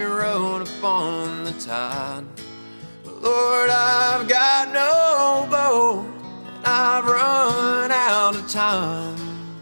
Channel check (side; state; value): both; inverted; correlation -1.00